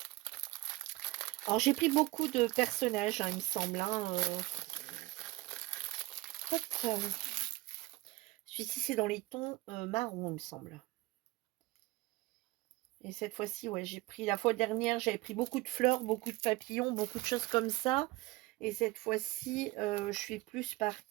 Alors j'ai pris beaucoup de personnages, hein, il me semble. Hein, hop, celui-ci c'est dans les tons marron, il me semble. Et cette fois-ci, ouais, j'ai pris, la fois dernière, j'avais pris beaucoup de fleurs, beaucoup de papillons, beaucoup de choses comme ça. Et cette fois-ci, je suis plus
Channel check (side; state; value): left; quieter; 20.0 dB